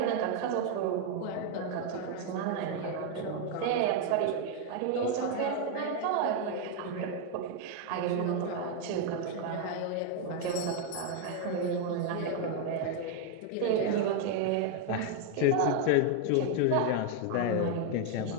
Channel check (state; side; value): different; both; correlation 0.01